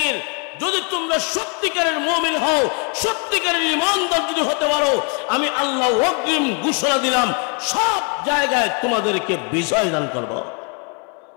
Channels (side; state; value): right; quieter; 36.7 dB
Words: যদি তোমরা সত্যিকারের মুমিন হও, সত্যিকারের ঈমানদার যদি হতে পারো, আমি আল্লাহ ওয়াকিম ঘোষণা দিলাম সব জায়গায় তোমাদেরকে বিজয় দান করব।